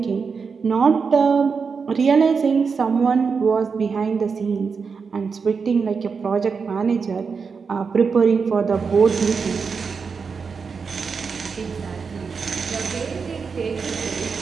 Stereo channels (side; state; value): left; quieter; 5.4 dB